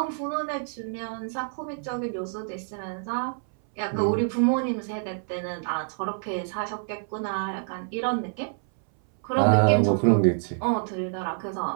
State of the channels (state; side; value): silent; left; 60 dB below the other